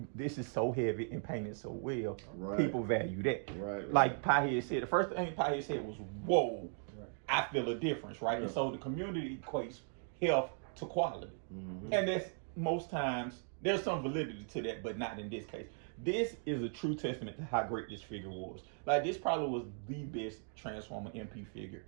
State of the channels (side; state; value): left; silent; 53 dB below the other